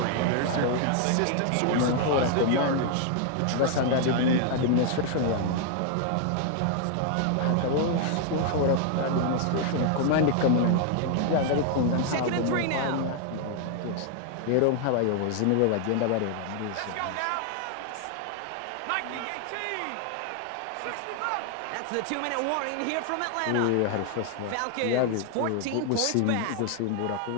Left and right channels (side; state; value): both; different; correlation 0.00